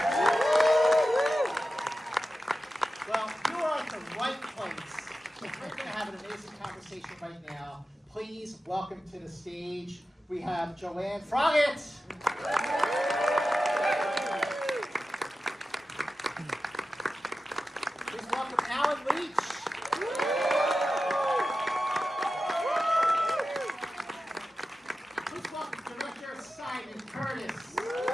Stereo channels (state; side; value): normal; both; correlation 0.93